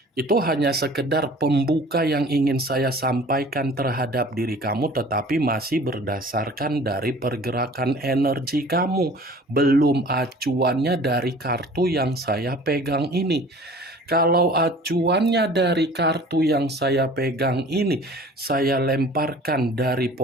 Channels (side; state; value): both; normal; correlation 0.47